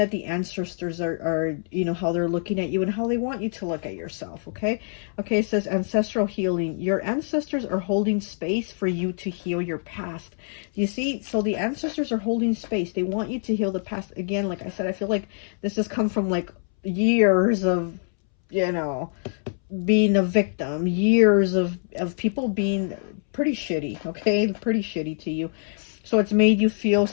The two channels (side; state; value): right; silent; 62 dB below the other